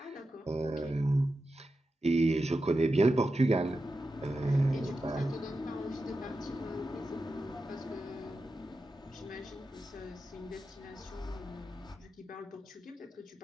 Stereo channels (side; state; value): both; normal; correlation 0.90